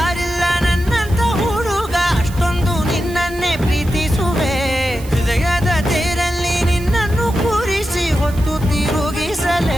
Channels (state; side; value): noise; right; hiss, 18 dB below the sound